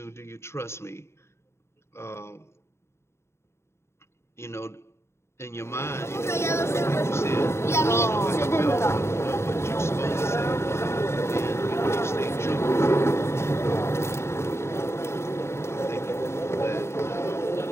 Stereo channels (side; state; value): right; late; 0.13 ms